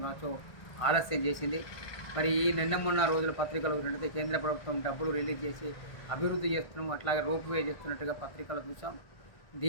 కావచ్చు ఆలస్యం చేసింది. మరి ఈ మొన్న రోజుల పత్రికలు ఉన్నట్లయితే కేంద్ర ప్రభుత్వం డబ్బులు రిలీజ్ చేసి అభివృద్ధి చేస్తున్నాం, అట్లాగే రోప్వే చేస్తున్నట్టుగా పత్రికలు చూసాం.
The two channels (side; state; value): right; late; 1.5 ms